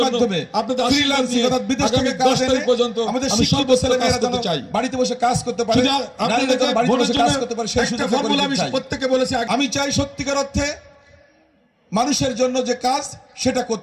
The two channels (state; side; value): identical; both; correlation 1.00